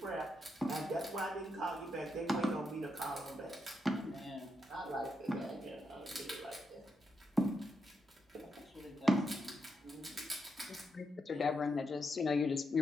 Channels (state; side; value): normal; both; correlation 0.82